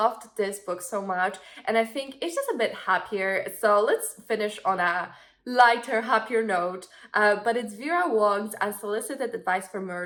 this book so much, and I think it's just a bit happier. So let's finish on a lighter, happier note. But it's Vera Wong's Unsolicited Advice for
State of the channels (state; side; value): identical; both; correlation 1.00